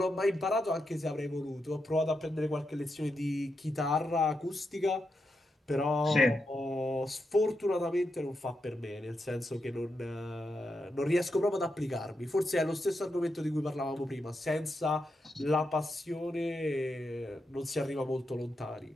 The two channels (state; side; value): normal; both; correlation 0.85